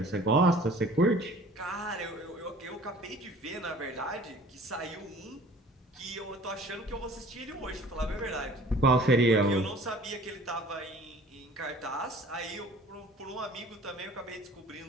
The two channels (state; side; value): normal; both; correlation 0.48